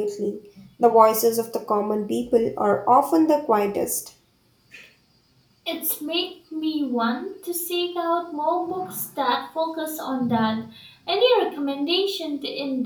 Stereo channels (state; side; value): identical; both; correlation 1.00